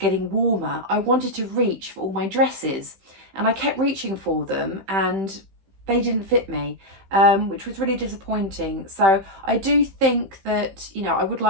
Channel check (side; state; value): left; late; 15 ms